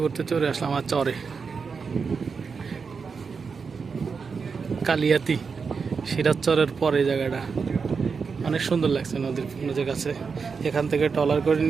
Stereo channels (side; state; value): left; quieter; 5.4 dB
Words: ঘুরতে চলে আসলাম আমার চরে কালিয়াতি, সিরাজ চরের পরে জায়গাটা অনেক সুন্দর লাগছে। নদীর কাছে এখান থেকে ট্রলার করে